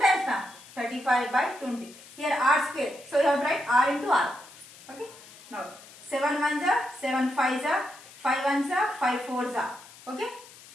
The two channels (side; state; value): left; noise; hiss, 20 dB below the sound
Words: now. 35 by 20. Here r square. So you have to write r into r. Okay. Now 7 ones are 7 fives are 5 ones are 5 fours are. Okay.